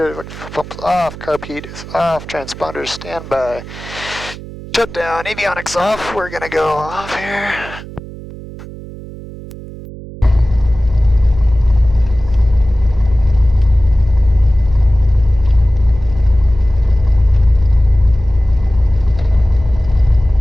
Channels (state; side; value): noise; right; hum, 14 dB below the sound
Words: pumps off, carb heat is off, transponders standby. Shutdown, avionics off. We're gonna go off here.